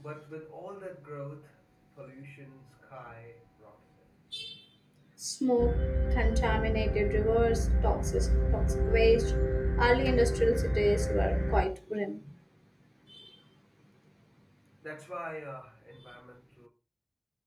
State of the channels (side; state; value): both; identical; correlation 1.00